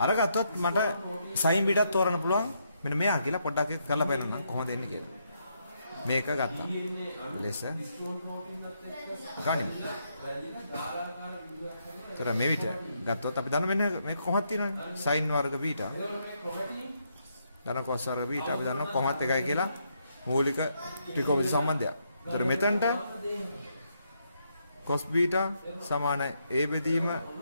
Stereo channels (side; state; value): both; inverted; correlation -0.77